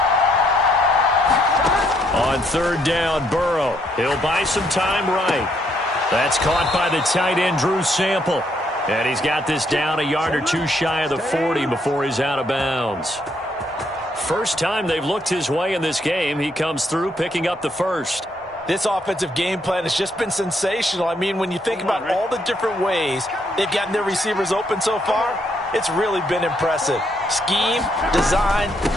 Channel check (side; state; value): both; normal; correlation 0.72